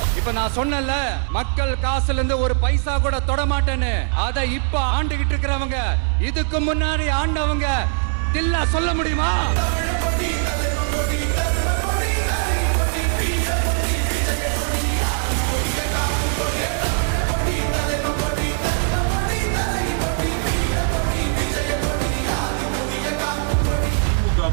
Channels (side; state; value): left; silent; 61 dB below the other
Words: இப்ப நான் சொன்னல, மக்கள் காசுல இருந்து ஒரு பைசா கூட தொட மாட்டேன்னு. அதை இப்ப ஆண்டுகிட்டு இருக்கிறவங்க, இதுக்கு முன்னாடி ஆண்டவங்க தில்லா சொல்ல முடியுமா?